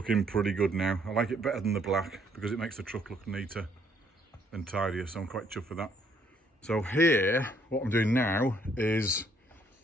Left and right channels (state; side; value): normal; both; correlation 0.67